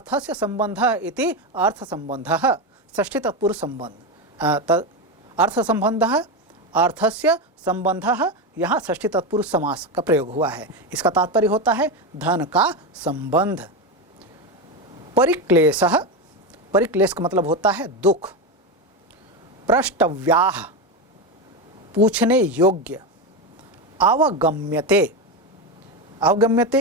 संबंधः इति अर्थ संबंधः, षष्ठी तत्पुरुष संबंध। अर्थ संबंधः अर्थस्य संबंधः, यहाँ षष्ठी तत्पुरुष समास का प्रयोग हुआ है। इसका तात्पर्य होता है धन का संबंध। परिक्लेशः, परिक्लेश का मतलब होता है दुख। प्रष्टव्याः, पूछने योग्य। अवगम्यते,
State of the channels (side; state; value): both; normal; correlation 0.14